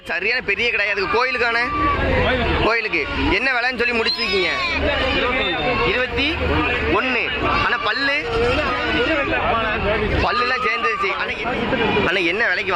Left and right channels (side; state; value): both; identical; correlation 1.00